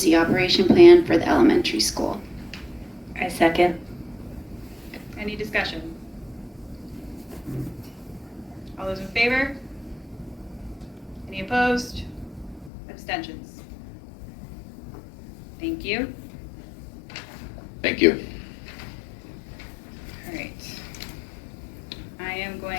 operation plan for the elementary school. I second. Any discussion? All those in favor? Any opposed? Abstentions? Thank you. Thank you. All right. I am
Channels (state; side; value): drops out; right; at 12.7 s